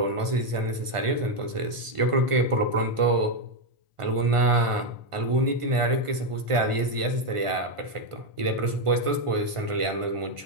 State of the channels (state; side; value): late; left; 1.5 ms